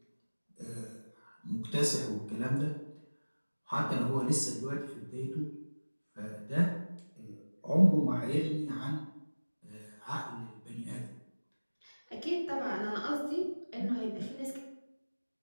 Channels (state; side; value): inverted; both; correlation -1.00